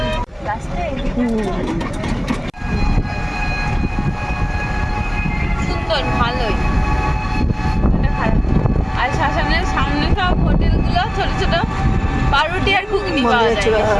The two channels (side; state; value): both; identical; correlation 1.00